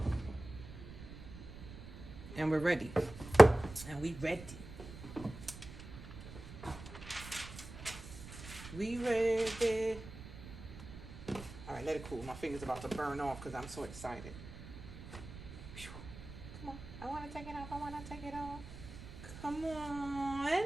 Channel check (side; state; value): right; noise; rumble, 13 dB below the sound